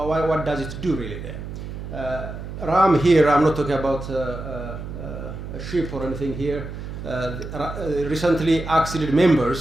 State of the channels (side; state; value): right; noise; hum, 9 dB below the sound